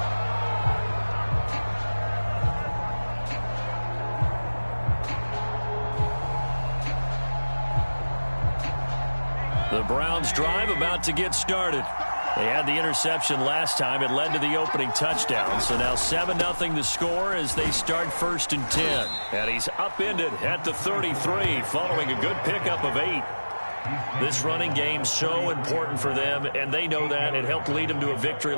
The Browns drive about to get started. They had the interception last time. It led to the opening touchdown. So now 7-0 the score as they start 1st and 10. And he's upended at the 33 following a good pickup of 8. This running game so important for them, and they know that. It helped lead them to a victory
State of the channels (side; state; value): both; inverted; correlation -1.00